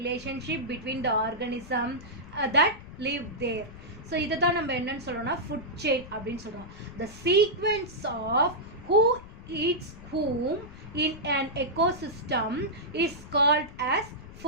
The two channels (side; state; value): left; noise; rumble, 16 dB below the sound